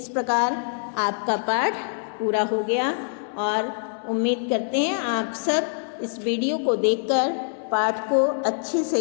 प्रकार आपका पाठ पूरा हो गया, और उम्मीद करते हैं आप सब इस वीडियो को देखकर पाठ को अच्छे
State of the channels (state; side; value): silent; right; 62 dB below the other